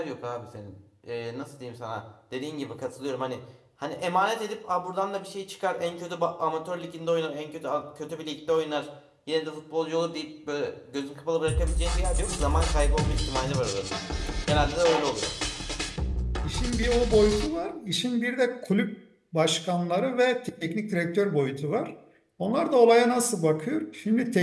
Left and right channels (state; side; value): identical; both; correlation 1.00